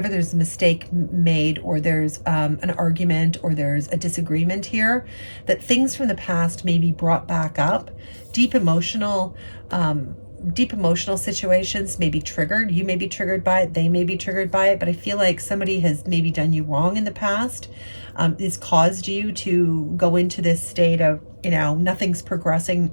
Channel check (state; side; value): inverted; both; correlation -1.00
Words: mistake made, or there's an argument, or there's a disagreement here, that things from the past may be brought back up. Deep emotional situations may be triggered. You may be triggered by it. They may be triggered by it. But I feel like somebody has maybe done you wrong in the past. It's caused you to go into this state of, nothing's progressing,